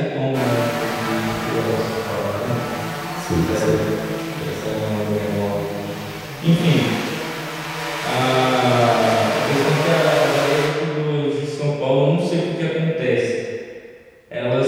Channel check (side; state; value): both; identical; correlation 1.00